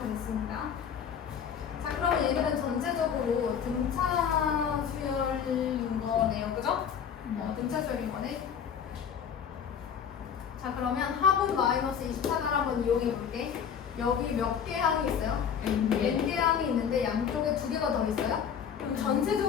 됐습니다. 자, 그러면 얘들은 전체적으로 등차 수열인 거네요. 그죠? 등차 수열인 거네. 자, 그러면 합은 마이너스 24를 한번 이용해 볼게. 여기 몇 개 항이 있어요? N개 항이 있는데 양쪽에 두 개가 더 있어요? 그럼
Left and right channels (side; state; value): right; quieter; 7.8 dB